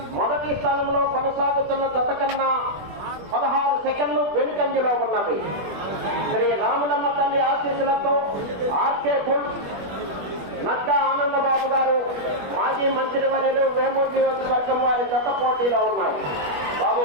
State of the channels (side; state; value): left; late; 21 ms